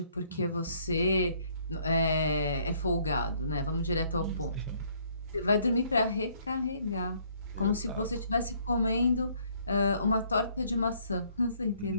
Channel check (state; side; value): inverted; both; correlation -0.64